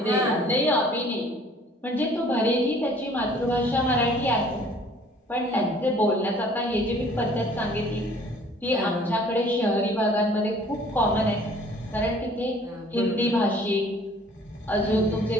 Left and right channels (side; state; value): both; normal; correlation 0.54